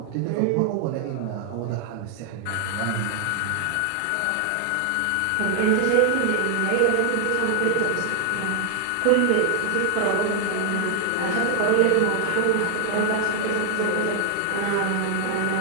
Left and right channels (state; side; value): different; both; correlation 0.00